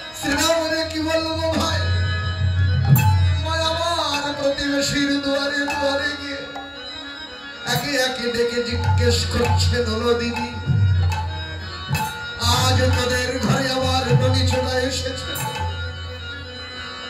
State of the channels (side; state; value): both; identical; correlation 1.00